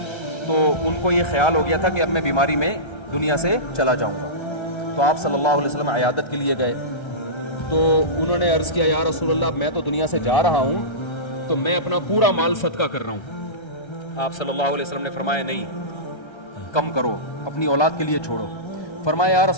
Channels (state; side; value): late; right; 1.3 ms